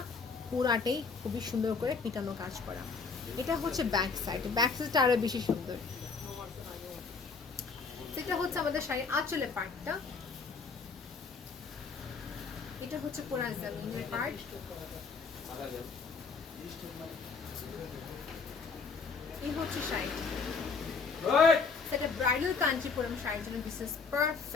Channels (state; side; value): quieter; right; 5.0 dB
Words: পুরাটাই খুবই সুন্দর করে পিটানো কাজ করা। এটা হচ্ছে ব্যাক সাইড, ব্যাক সাইডটা আরও বেশি সুন্দর। সেটা হচ্ছে আমাদের শাড়ির আঁচলে পার্টটা। এটা হচ্ছে পুরা জামিনের পার্ট। এই হচ্ছে শাড়ি, সেটা ব্রাইডাল কাঞ্চিপুরম শাড়ির জন্য দিস ইজ